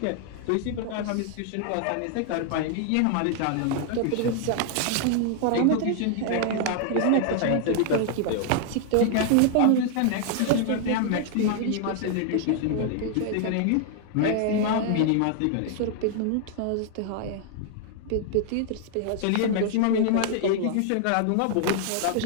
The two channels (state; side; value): different; both; correlation 0.00